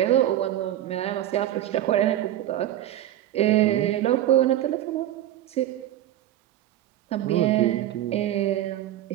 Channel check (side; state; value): left; quieter; 12.8 dB